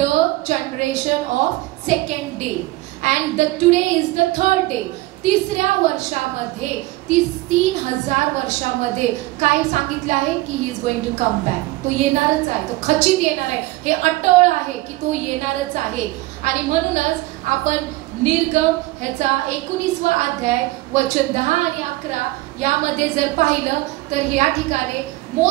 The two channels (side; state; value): left; quieter; 19.5 dB